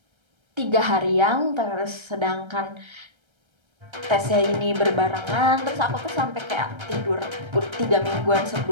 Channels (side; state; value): left; late; 1.3 ms